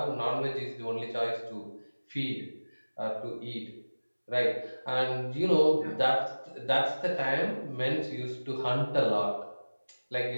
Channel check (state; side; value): inverted; both; correlation -1.00